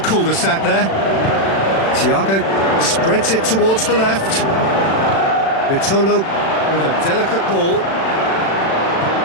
there. Thiago spreads it towards the left. Vitolo with a delicate ball.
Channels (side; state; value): right; late; 36 ms